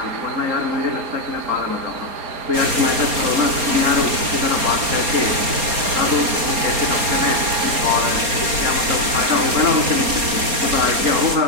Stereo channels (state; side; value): late; left; 4.3 ms